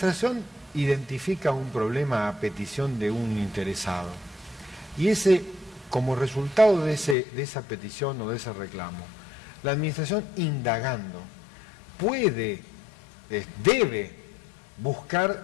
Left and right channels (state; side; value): drops out; right; at 7.2 s